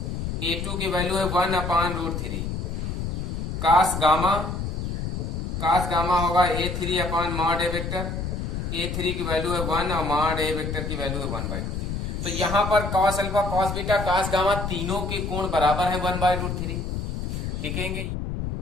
A2 की वैल्यू है 1 अपॉन √3। कास गामा होगा A3 अपॉन मॉड ए वेक्टर, A3 की वैल्यू है 1 और मॉड ए वेक्टर की वैल्यू है 1/√3। तो यहां पर cos alpha, cos beta, cos gamma तीनों के कोण बराबर है 1/√3। लिखेंगे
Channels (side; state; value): left; noise; rumble, 3 dB below the sound